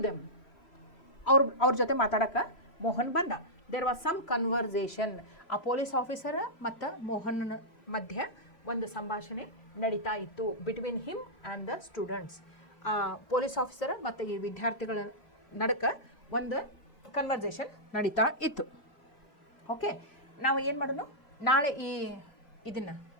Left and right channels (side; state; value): right; late; 3.0 ms